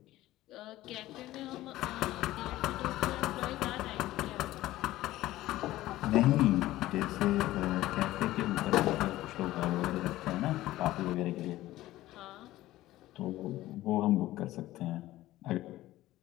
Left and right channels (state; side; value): quieter; right; 15.9 dB